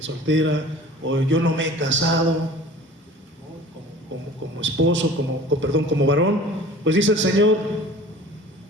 soltera, o yo no me he casado, ¿no? Como esposo, como varón. Pues dice el Señor,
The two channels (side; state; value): both; normal; correlation 0.44